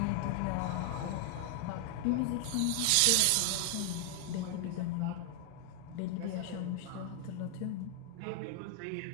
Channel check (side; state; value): both; different; correlation 0.00